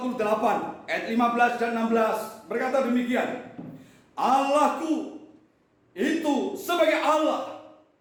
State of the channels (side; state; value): both; identical; correlation 1.00